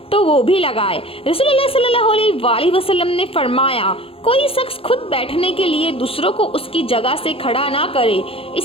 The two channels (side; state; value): right; late; 0.27 ms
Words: तो वो भी लगाए। रसूलुल्लाह सल्लल्लाहु अलैहि वसल्लम ने फरमाया, कोई शख्स खुद बैठने के लिए दूसरों को उसकी जगह से खड़ा ना करे,